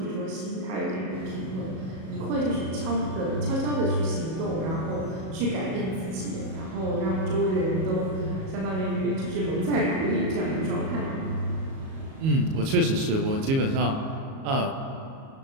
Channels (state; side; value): late; left; 37 ms